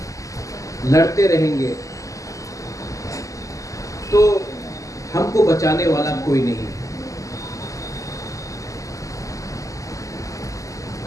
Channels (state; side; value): late; right; 0.16 ms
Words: लड़ते रहेंगे तो हमको बचाने वाला कोई नहीं है।